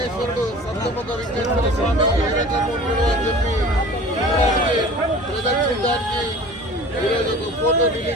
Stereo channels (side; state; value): both; normal; correlation 0.42